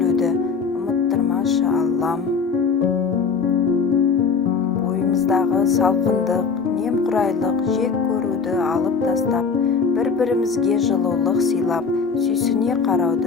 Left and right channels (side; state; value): right; quieter; 5.3 dB